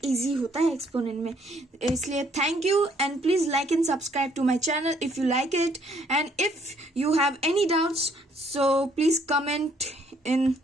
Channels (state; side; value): normal; both; correlation 0.65